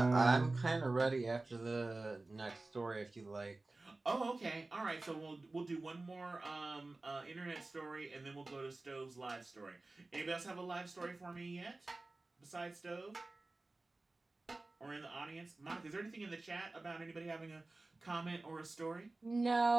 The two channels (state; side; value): quieter; left; 3.1 dB